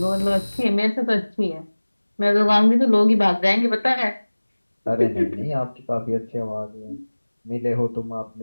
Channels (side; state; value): both; inverted; correlation -1.00